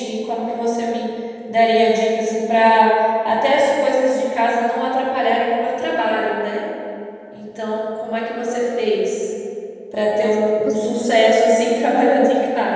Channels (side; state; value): both; identical; correlation 1.00